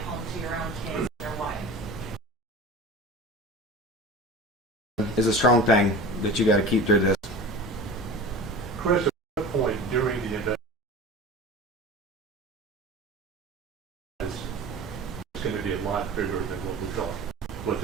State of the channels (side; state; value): both; normal; correlation 0.34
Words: home to your own kids and your wife? Is a strong thing that you got to keep through this. Chris, at what point during the investigation, it's going to be a lot bigger than what we thought? Was